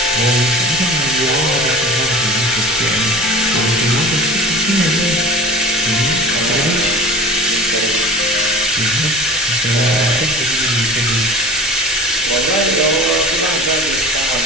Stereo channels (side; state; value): both; normal; correlation 0.37